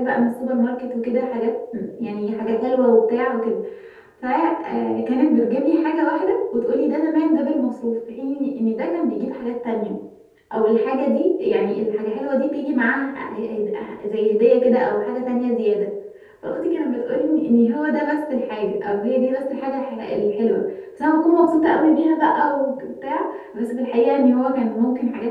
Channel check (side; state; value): both; identical; correlation 1.00